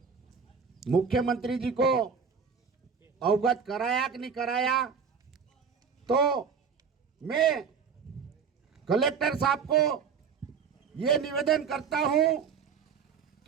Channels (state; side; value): quieter; left; 6.3 dB